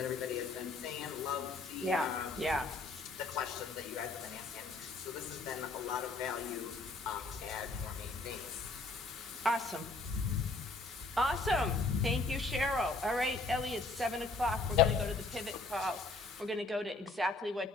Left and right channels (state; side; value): quieter; right; 3.5 dB